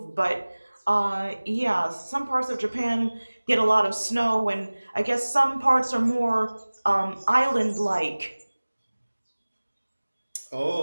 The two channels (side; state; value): both; inverted; correlation -1.00